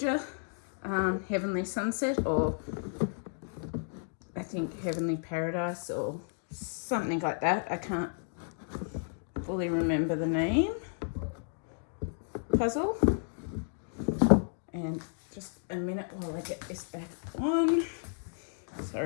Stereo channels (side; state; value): right; silent; digital silence